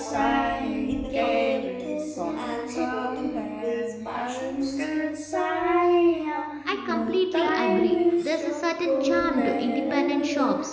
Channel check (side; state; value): both; identical; correlation 1.00